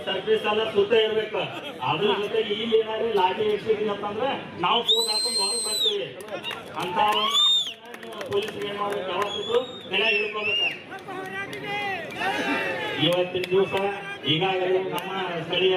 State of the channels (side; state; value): both; identical; correlation 1.00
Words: ಸರ್ವಿಸ್ ಎಲ್ಲ ಸುತ್ತ ಇರ್ಬೇಕು. ಅದ್ರ ಜೊತೆಗೆ ಇಲ್ಲಿ ಏನಾದ್ರು ಲಾಟಿ ಇಡ್ಸಿದೀನಿ ಅಂತಂದ್ರೆ ನಾವು ಫೋನ್ ಹಾಕೊಂಡು ಹೊರಗೆ ಬರ್ತೀವಿ ಅಂತ ಪೊಲೀಸರು ಏನ್ ಮಾಡ್ಬೇಕು, ಯಾವತ್ತಿದ್ರು ಬೆಲೆ ಹಿಡ್ಕೋಬೇಕ. ಇವತ್ತಿನ ದಿವಸ ಈಗಾಗಲೇ ನಮ್ಮ ಸ್ಥಳೀಯ